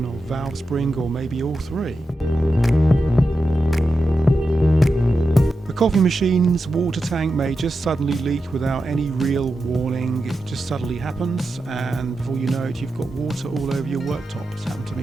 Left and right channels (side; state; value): both; normal; correlation 0.90